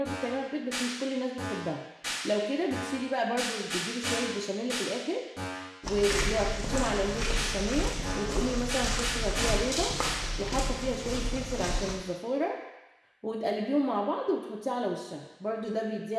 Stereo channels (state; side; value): identical; both; correlation 1.00